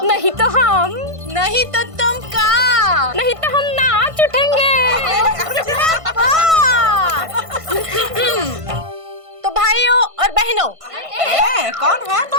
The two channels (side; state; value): left; late; 1.5 ms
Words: नहीं तो हम। नहीं तो तुम का? नहीं तो हम नाच उठेंगे। तो भाइयों और बहनों, कौन है